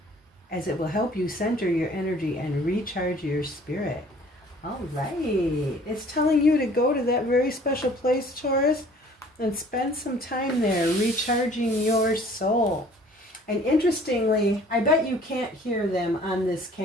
as it will help you center your energy and recharge your spirit. All right. It's telling you to go to that very special place, Taurus, and spend some time there recharging your soul. And interestingly, I bet you can't hear them on this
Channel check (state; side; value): normal; both; correlation 0.53